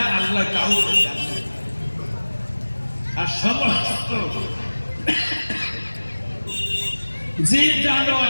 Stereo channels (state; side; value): inverted; both; correlation -1.00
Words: আল্লাহ কাউকে জানে, আর সমস্ত জীব